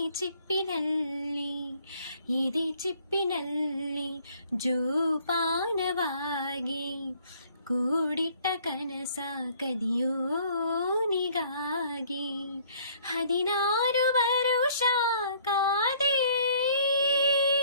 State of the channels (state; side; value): inverted; both; correlation -0.59